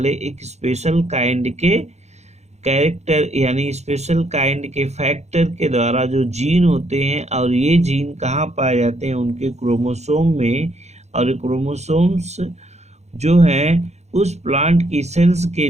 एक स्पेशल काइंड के कैरेक्टर यानी स्पेशल काइंड के फैक्टर के द्वारा जो जीन होते हैं। और ये जीन कहाँ पाए जाते हैं, उनके क्रोमोसोम में। और क्रोमोसोम्स जो हैं उस प्लांट की सेल्स के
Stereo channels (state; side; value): late; left; 0.32 ms